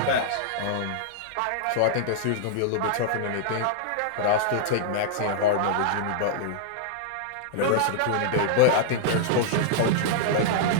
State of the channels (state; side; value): different; both; correlation -0.02